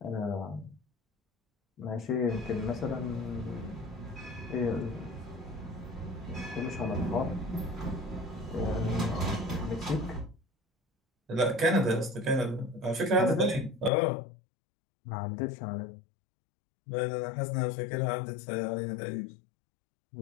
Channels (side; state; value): right; drops out; at 13.9 s